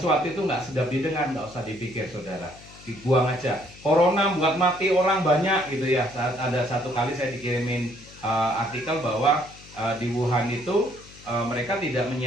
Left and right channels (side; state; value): left; noise; hum, 21 dB below the sound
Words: itu nggak sedap didengar, nggak usah dipikir, saudara. Dibuang aja. Corona buat mati orang banyak gitu ya. Saat ada satu kali saya dikirimin artikel bahwa di Wuhan itu mereka tidak